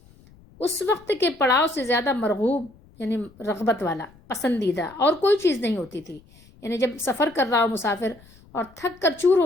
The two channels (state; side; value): noise; left; rumble, 26 dB below the sound